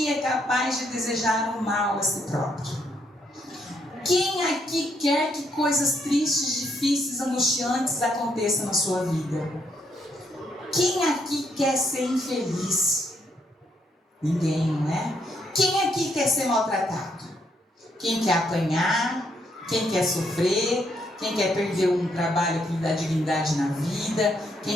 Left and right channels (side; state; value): both; normal; correlation 0.75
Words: é capaz de desejar o mal a si próprio? Quem aqui quer que coisas tristes, difíceis, angustiantes aconteçam na sua vida? Quem aqui quer ser infeliz? Ninguém, não é? Quem aqui quer ser maltratado? Quem quer apanhar? Quem quer sofrer? Quem quer perder um trabalho que lhe dá dignidade na vida?